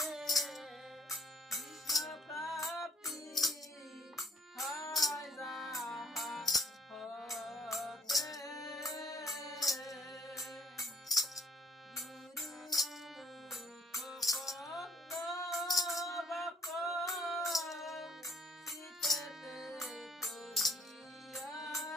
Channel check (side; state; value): both; normal; correlation 0.63